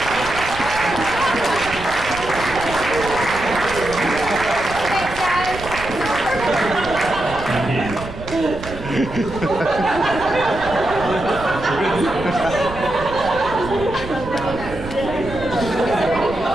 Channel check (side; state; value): right; noise; rumble, 12 dB below the sound